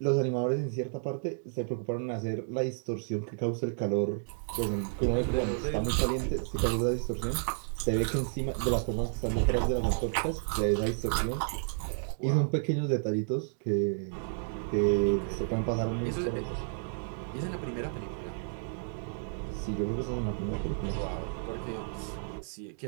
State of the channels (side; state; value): left; silent; digital silence